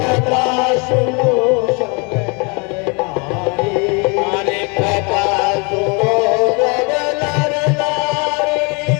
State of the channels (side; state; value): right; quieter; 31.9 dB